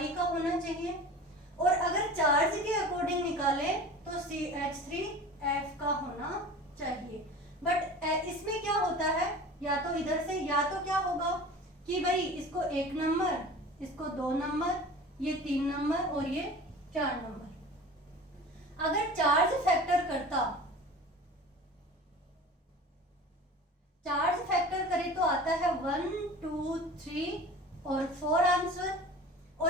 का होना चाहिए, और अगर चार्ज के अकॉर्डिंग निकालें तो CH3F का होना चाहिए। बट इसमें क्या होता है, या तो इधर से, या तो क्या होगा कि भाई इसको 1 नंबर, इसको 2 नंबर, ये 3 नंबर और ये 4 नंबर। अगर चार्ज फैक्टर करता, चार्ज फैक्टर करे तो आता है 1 2 3 और 4 आंसर।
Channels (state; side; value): normal; both; correlation 0.38